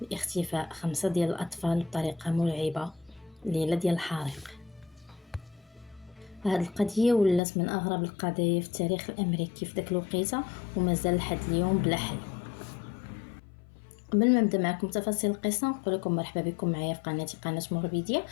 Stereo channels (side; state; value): right; drops out; at 7.4 s